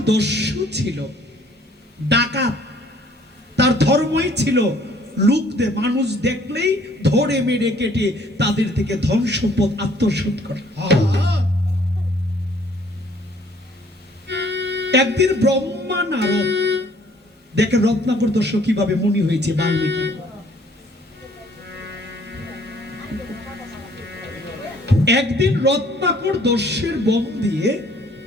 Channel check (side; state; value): both; normal; correlation 0.59